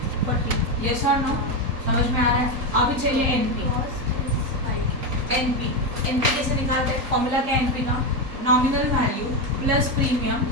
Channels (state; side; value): late; left; 3.8 ms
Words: Yes और नो? समझ में आ रहा है? अभी चाहिए एनपी। एनपी कैसे निकालते हैं? फॉर्मूला क्या है एनपी का? Nominal value plus premium